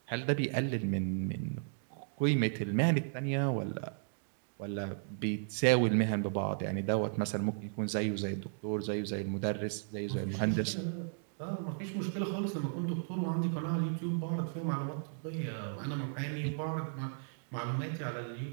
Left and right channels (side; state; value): left; silent; digital silence